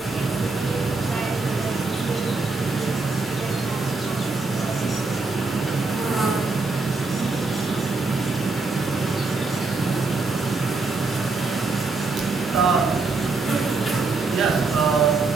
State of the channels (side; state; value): left; quieter; 3.8 dB